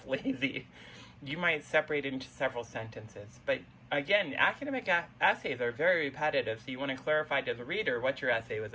lazy. You might separate it into several sentences. But again, academic essays are very repetitive, so you want to clarify to the reader what your essay was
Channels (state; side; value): identical; both; correlation 1.00